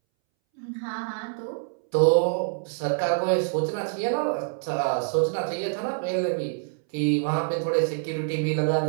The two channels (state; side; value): silent; left; 61 dB below the other